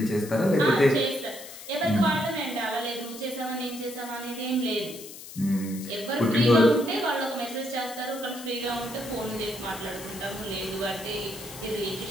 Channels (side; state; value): left; noise; hiss, 14 dB below the sound